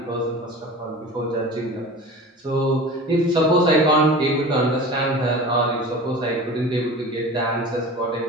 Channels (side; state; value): both; normal; correlation 0.36